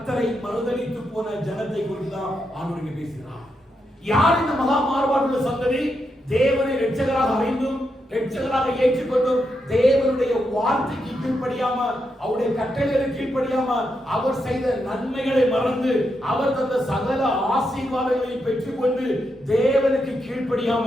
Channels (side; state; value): both; normal; correlation 0.83